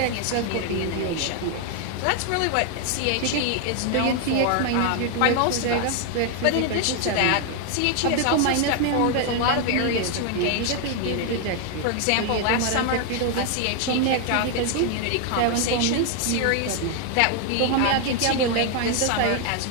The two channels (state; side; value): different; both; correlation 0.00